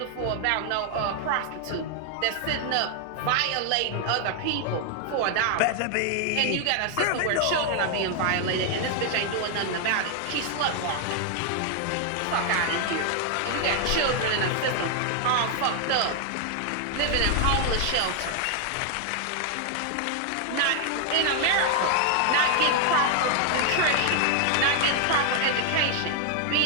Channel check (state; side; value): different; both; correlation 0.00